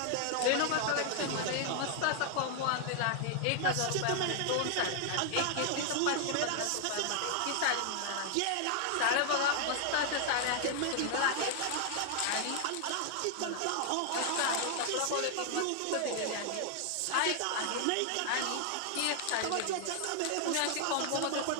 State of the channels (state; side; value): different; both; correlation 0.00